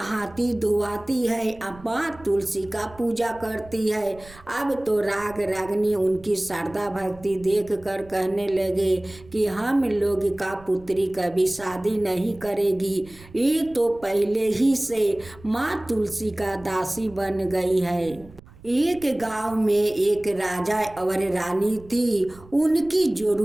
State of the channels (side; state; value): right; noise; rumble, 22 dB below the sound